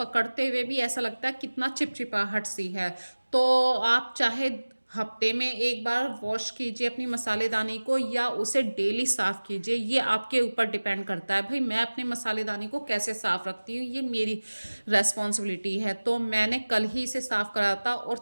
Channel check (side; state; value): both; inverted; correlation -1.00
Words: हुए भी ऐसा लगता है कितना चिपचिपाहट सी है। तो आप चाहे हफ्ते में एक बार वॉश कीजिए अपनी मसालेदानी को या उसे डेली साफ़ कीजिए, ये आपके ऊपर डिपेंड करता है। भाई मैं अपने मसालेदानी को कैसे साफ़ रखती हूँ ये मेरी रेस्पॉन्सिबिलिटी है। तो मैंने कल ही इसे साफ़ करा था और